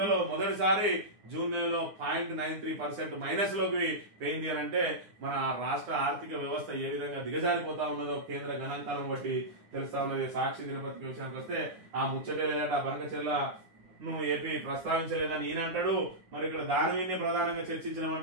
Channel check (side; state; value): left; late; 9.8 ms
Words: మొదటిసారి జూన్ నెలలో 0.93% మైనస్ లోకి పోయింది అని అంటే మన రాష్ట్ర ఆర్థిక వ్యవస్థ ఏ విధంగా దిగజారిపోతా ఉన్నదో కేంద్ర గణాంకాలను బట్టి తెలుస్తా ఉన్నది. సాక్షి దినపత్రిక విషయానికి వస్తే ఆ ముచ్చటే లేదట, బనకచెర్ల ఏపీ ప్రస్తావించలేదని ఈయన అంటాడు. మరి ఇక్కడ దాని మీదనే ప్రధానంగా